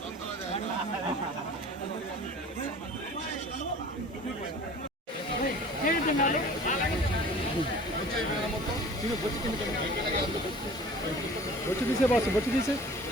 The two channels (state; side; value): normal; both; correlation 0.44